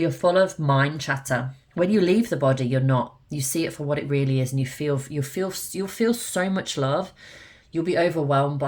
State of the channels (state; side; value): identical; both; correlation 1.00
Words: full of mind chatter. When you leave the body, you're not. You see it for what it really is, and you'll feel so much love. You'll be overwhelmed